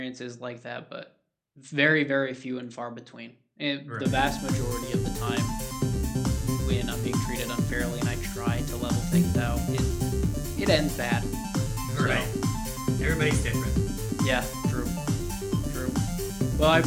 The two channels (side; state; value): both; identical; correlation 1.00